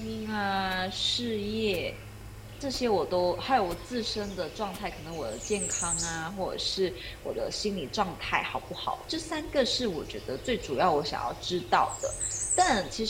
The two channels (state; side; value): identical; both; correlation 1.00